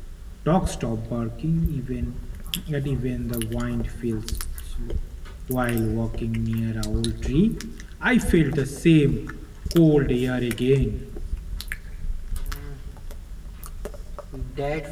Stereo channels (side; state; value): both; identical; correlation 1.00